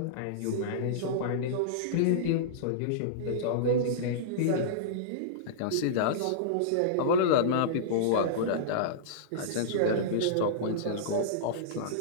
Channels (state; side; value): different; both; correlation -0.03